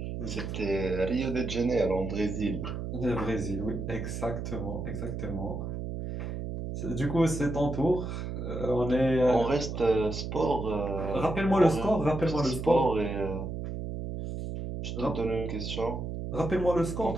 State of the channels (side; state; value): right; noise; hum, 5 dB below the sound